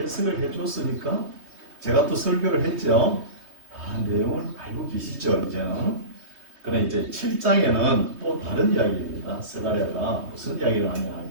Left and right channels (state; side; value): late; left; 3.2 ms